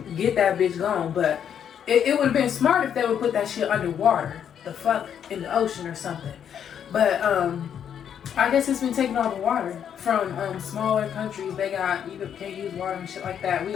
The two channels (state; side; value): quieter; right; 8.7 dB